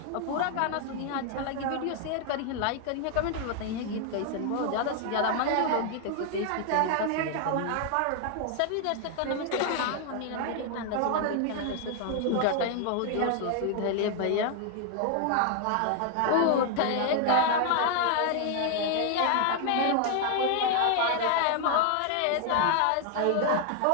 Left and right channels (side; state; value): both; different; correlation 0.00